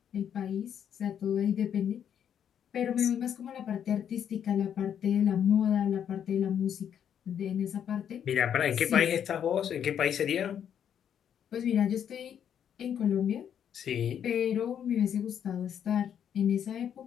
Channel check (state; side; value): quieter; right; 8.9 dB